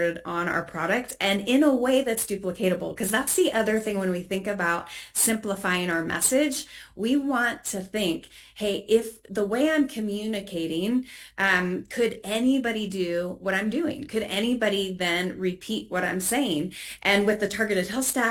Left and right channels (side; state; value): both; identical; correlation 1.00